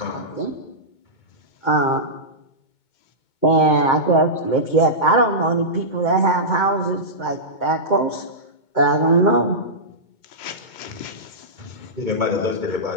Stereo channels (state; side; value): late; right; 2.2 ms